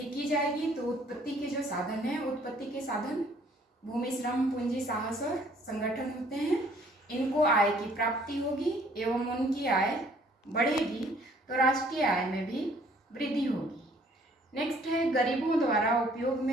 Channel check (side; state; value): both; normal; correlation 0.60